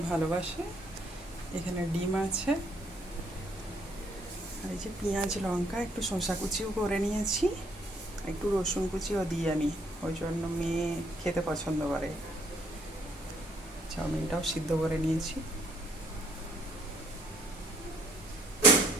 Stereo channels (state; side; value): normal; both; correlation 0.65